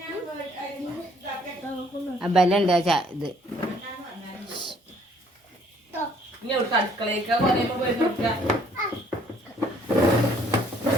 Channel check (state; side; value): normal; both; correlation 0.62